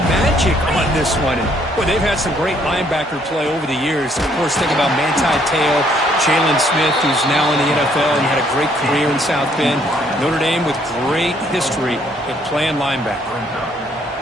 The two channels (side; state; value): both; normal; correlation 0.66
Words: magic on this one. And, boy, they've had some great linebacker play over the years. Of course, think about Manti Te'o, Jalen Smith, who's now in the NFL and had a great career in South Bend. Notre Dame with great history at playing linebacker.